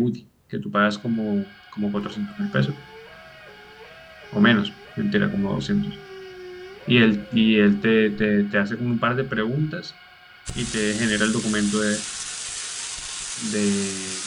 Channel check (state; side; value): identical; both; correlation 1.00